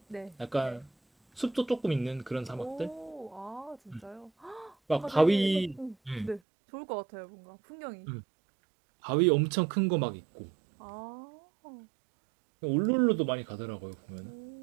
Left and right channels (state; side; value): drops out; left; at 6.4 s